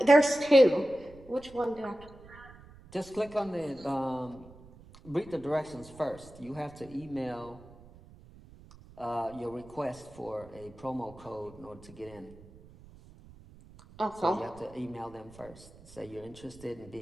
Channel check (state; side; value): noise; right; rumble, 21 dB below the sound